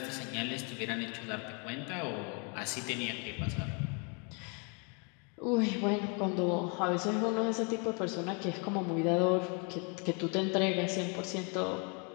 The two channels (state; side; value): quieter; right; 35.5 dB